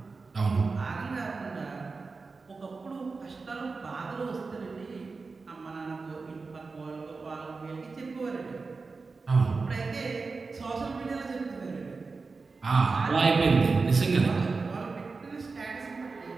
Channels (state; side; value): quieter; left; 4.3 dB